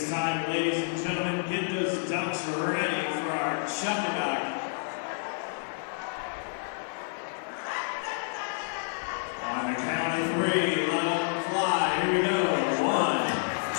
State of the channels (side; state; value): right; silent; digital silence